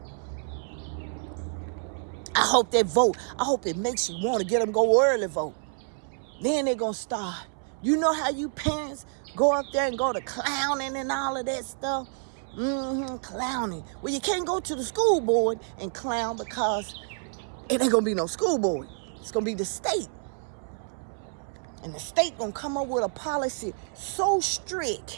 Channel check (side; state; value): left; silent; 59 dB below the other